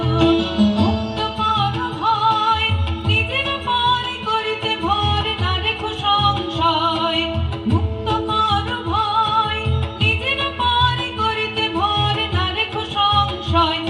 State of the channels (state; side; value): identical; both; correlation 1.00